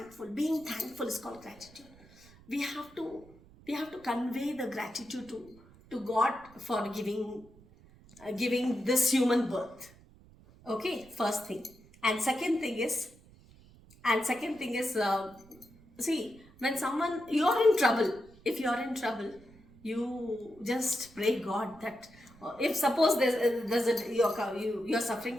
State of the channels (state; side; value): noise; right; rumble, 24 dB below the sound